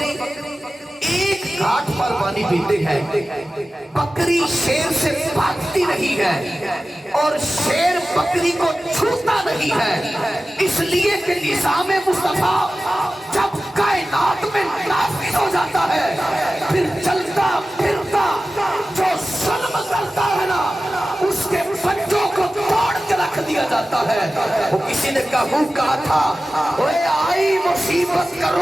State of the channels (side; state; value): both; normal; correlation 0.95